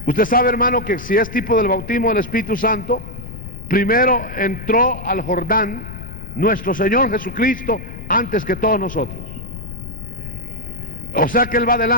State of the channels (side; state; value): left; noise; rumble, 11 dB below the sound